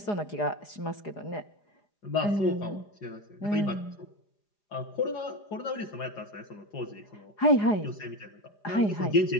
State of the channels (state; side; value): late; right; 4.9 ms